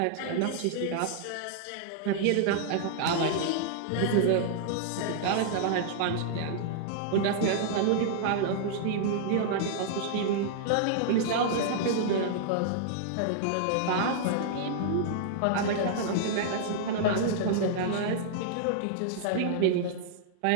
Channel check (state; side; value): different; both; correlation -0.01